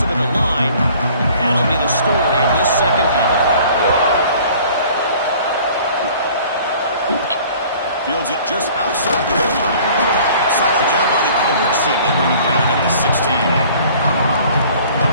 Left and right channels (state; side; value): inverted; both; correlation -0.51